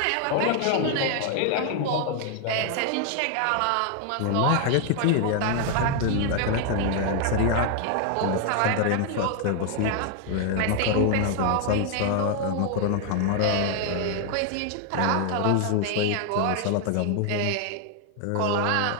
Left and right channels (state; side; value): different; both; correlation 0.00